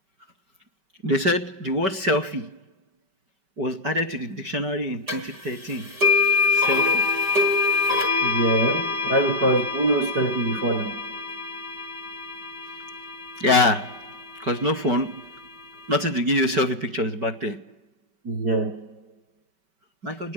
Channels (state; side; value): late; left; 5.2 ms